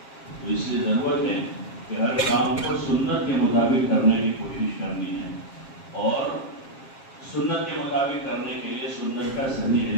اس لیے ضرورت ہے کہ ہر کام کو سنت کے مطابق کرنے کی کوشش کرنی ہے، اور سنت کے مطابق کرنے کے لیے سنت کا صحیح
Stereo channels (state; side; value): late; right; 7.4 ms